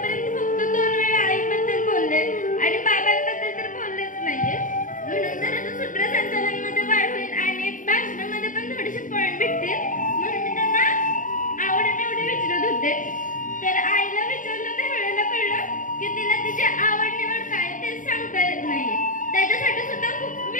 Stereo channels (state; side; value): late; right; 0.38 ms